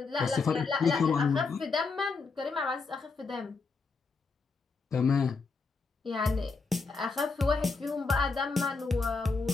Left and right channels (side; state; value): right; quieter; 4.4 dB